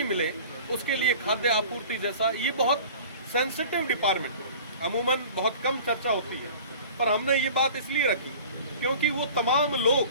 मिले, उसके लिए खाद्य आपूर्ति जैसा ये बहुत सेंसिटिव डिपार्टमेंट अमूमन बहुत कम चर्चा होती है, पर हमने ये बात इसलिए रखी क्योंकि वो तमाम लोग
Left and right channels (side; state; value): both; inverted; correlation -0.43